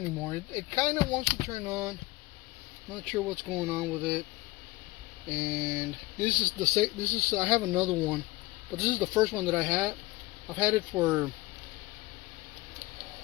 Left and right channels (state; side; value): quieter; right; 20.6 dB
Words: It kind of wants to turn on, not sure what's going on with it. And this is I have another one, but this is the first one that I had. I've had it for